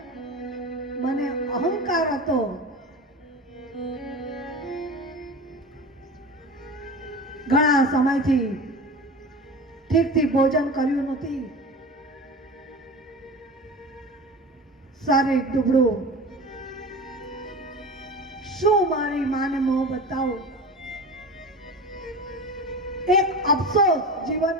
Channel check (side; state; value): both; normal; correlation 0.32